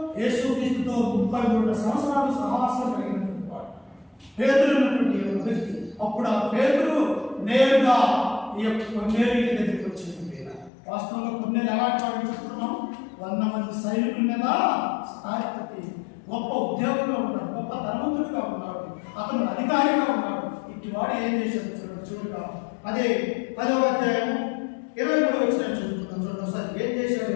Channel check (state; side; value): drops out; right; at 10.7 s